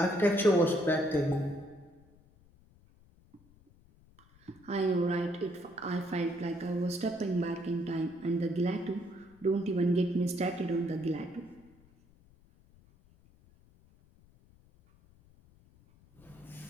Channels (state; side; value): noise; left; rumble, 28 dB below the sound